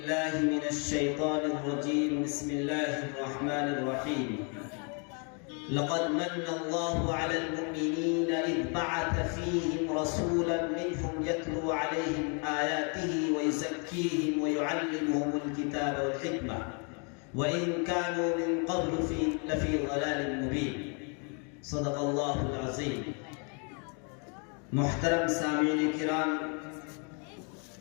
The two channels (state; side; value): quieter; right; 37.5 dB